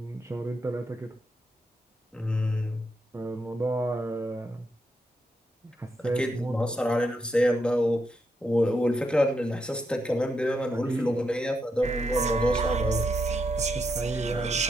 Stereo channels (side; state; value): both; normal; correlation 0.82